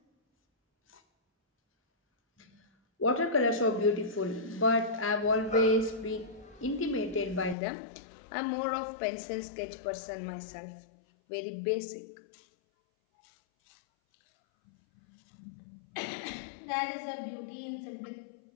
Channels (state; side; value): drops out; right; at 7.6 s